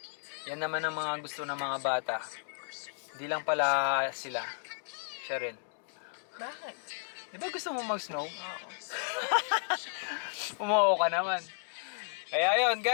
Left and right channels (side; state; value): right; silent; digital silence